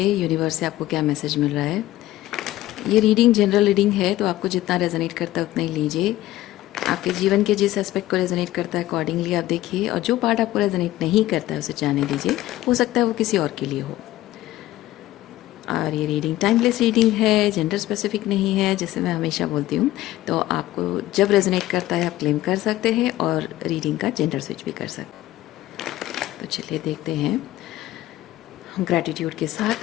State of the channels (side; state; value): right; quieter; 15.6 dB